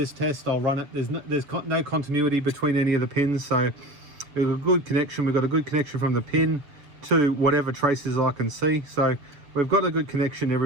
test, I'll run it. There's no continuity between any of the pins, so we've got a good connection. We've got a good connection from the pin to whatever traces I can see. So we've got a good connection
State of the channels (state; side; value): late; left; 7.1 ms